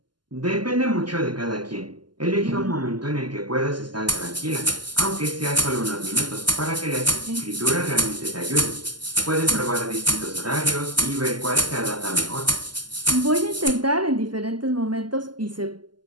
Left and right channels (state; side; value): late; left; 0.71 ms